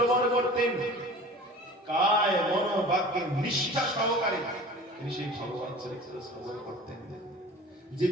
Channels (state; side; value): normal; both; correlation 0.40